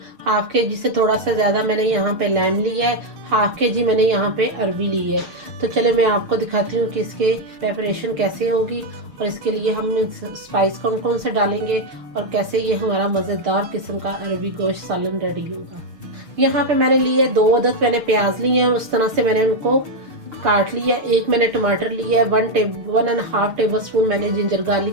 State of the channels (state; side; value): late; left; 6.7 ms